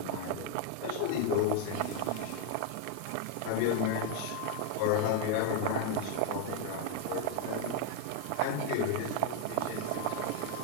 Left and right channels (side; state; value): both; different; correlation 0.01